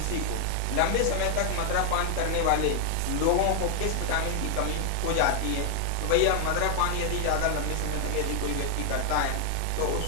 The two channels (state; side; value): different; both; correlation 0.00